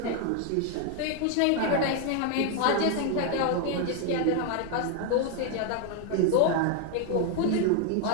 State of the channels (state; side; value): different; both; correlation 0.01